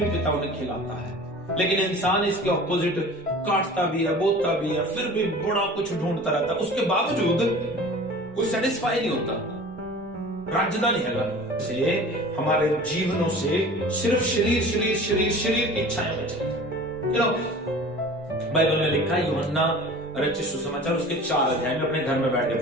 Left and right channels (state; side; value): normal; both; correlation 0.41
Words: पिता उन्हें खिलाता है। लेकिन इंसान इसके ऑपोजिट काटता भी है, बोता भी है, फिर भी बड़ा कुछ ढूंढता रहता है, उसके बावजूद कोई सेटिस्फाई नहीं होता, राजधानी है से हमारे जीवनों से सिर्फ शरीर शरीर शरीर शरीर की इच्छाएं बचेंगी। बाइबल में लिखा है, यूहन्ना रचित सुसमाचार उसके 4 अध्याय में अपने घर में बैठ के